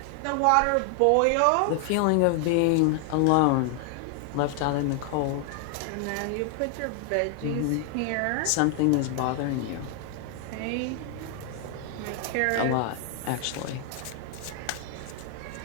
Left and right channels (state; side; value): different; both; correlation 0.00